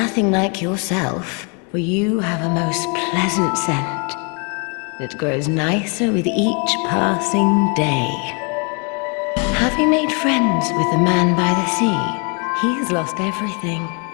like yourself, for you have a most pleasant scent. It grows nicer with each passing day. Have you made friends with the man by the sea? He's lost everything.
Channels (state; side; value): quieter; right; 35.7 dB